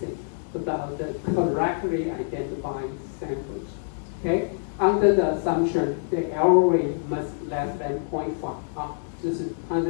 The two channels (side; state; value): right; silent; digital silence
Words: about the correctly identified samples. Okay, under the assumption the error rate must less than 0.5 啊，就是它